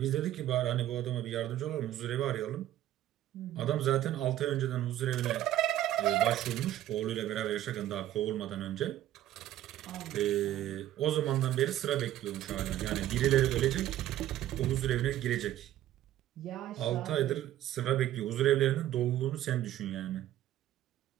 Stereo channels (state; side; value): quieter; left; 13.1 dB